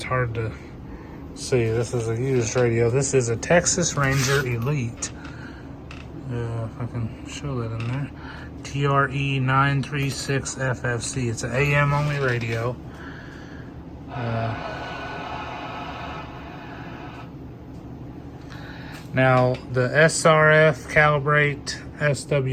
hard to see. This is a used radio. This is a Texas Ranger Elite. If I can show that in there. TRE-936FFC. It's an AM only radio. Now the SRF calibrate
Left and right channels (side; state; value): both; identical; correlation 1.00